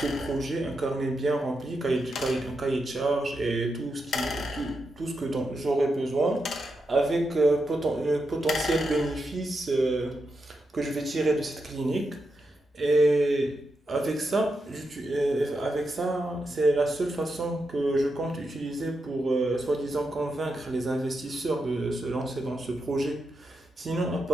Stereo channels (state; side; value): normal; both; correlation 0.86